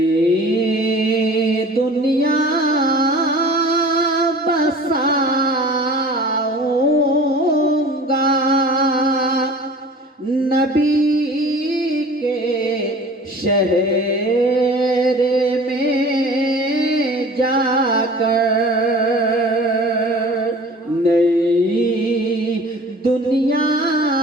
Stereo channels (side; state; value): both; normal; correlation 0.43